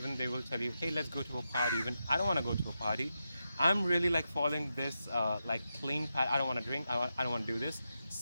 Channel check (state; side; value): inverted; both; correlation -0.88